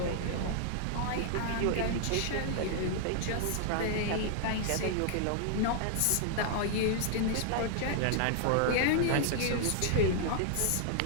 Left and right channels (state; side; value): different; both; correlation -0.01